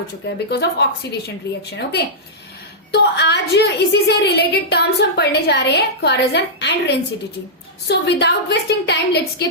चुका है because of oxidation reaction. Okay, तो आज इसी से रिलेटेड टर्म्स हम पढ़ने जा रहे हैं, corrosion and rancidity. So without wasting time let's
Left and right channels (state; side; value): normal; both; correlation -0.11